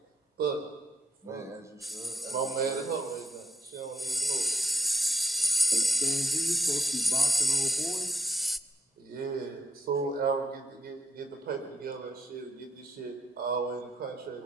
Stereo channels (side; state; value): both; normal; correlation 0.78